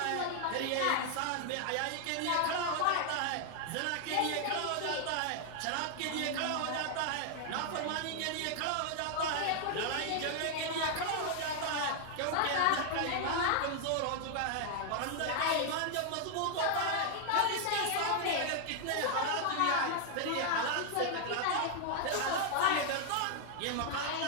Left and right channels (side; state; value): both; different; correlation 0.00